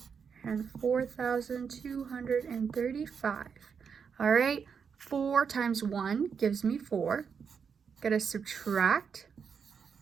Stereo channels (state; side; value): quieter; left; 6.5 dB